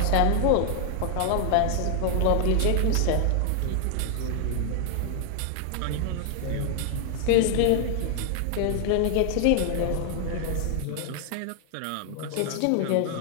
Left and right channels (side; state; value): both; different; correlation 0.00